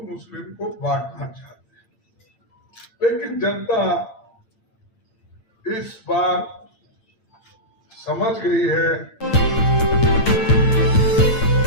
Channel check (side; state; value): right; late; 8.8 ms